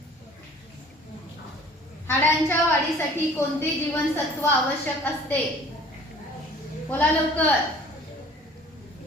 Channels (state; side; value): normal; both; correlation 0.49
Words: हाडांच्या वाढीसाठी कोणते जीवनसत्व आवश्यक असते? बोला लवकर.